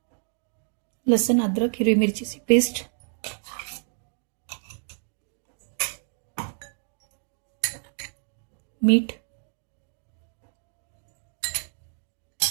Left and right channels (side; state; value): left; silent; 59 dB below the other